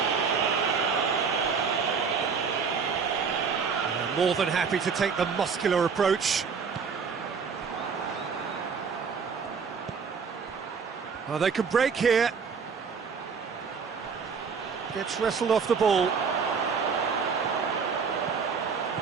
More than happy to take the muscular approach. Oh, they can break here. Gets wrestled off the ball.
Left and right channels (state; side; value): quieter; left; 5.8 dB